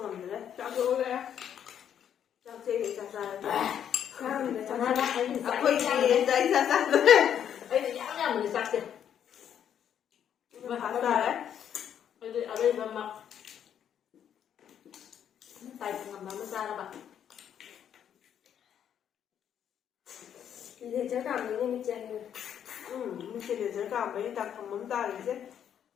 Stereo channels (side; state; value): right; quieter; 9.2 dB